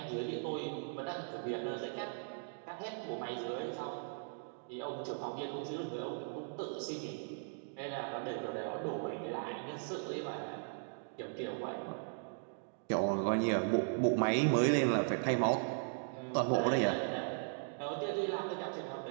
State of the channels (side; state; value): left; silent; digital silence